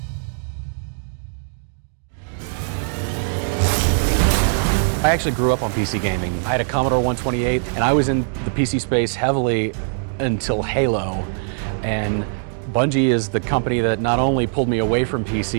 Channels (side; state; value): left; silent; digital silence